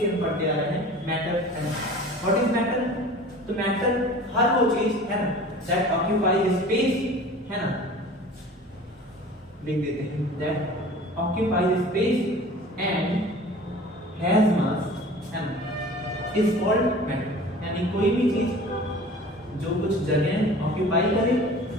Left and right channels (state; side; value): normal; both; correlation 0.42